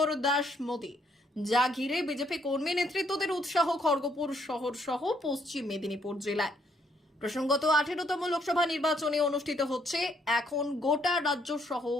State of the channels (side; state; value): both; normal; correlation 0.70